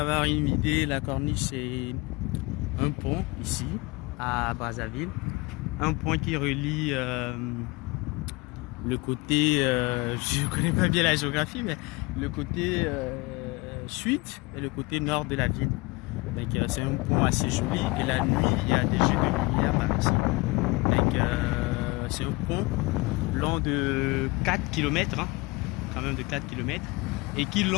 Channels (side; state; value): right; quieter; 24.9 dB